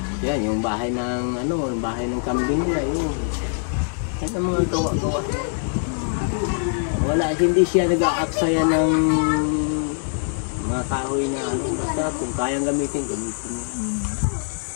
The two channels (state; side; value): silent; right; 63 dB below the other